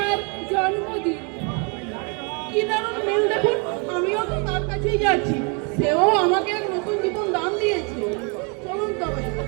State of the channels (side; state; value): left; quieter; 34.8 dB